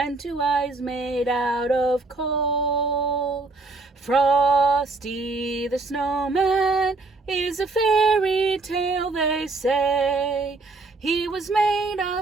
2 eyes made out of coal. Frosty the Snowman is a fairy tale, they say. He was made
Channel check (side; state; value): left; quieter; 3.5 dB